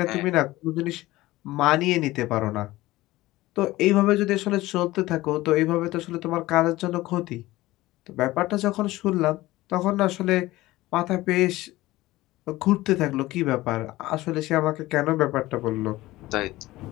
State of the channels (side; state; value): right; quieter; 18.0 dB